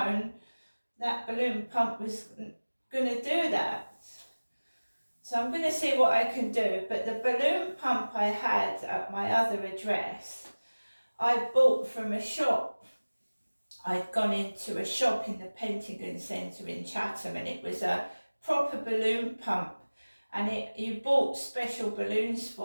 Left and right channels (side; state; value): both; inverted; correlation -1.00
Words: that balloon pump was going to do that. So I'm going to see what I can do. But the balloon pump I had at my other address, I bought from a shop. I'd gone into a shop in the Pentagon Centre in Chatham, and it was a proper balloon pump. And you bought special balloons